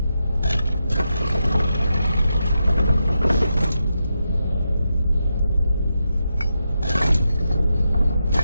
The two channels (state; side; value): inverted; both; correlation -0.86